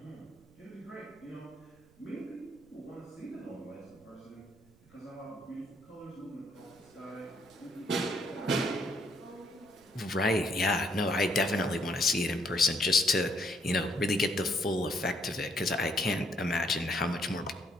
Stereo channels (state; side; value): noise; right; rumble, 29 dB below the sound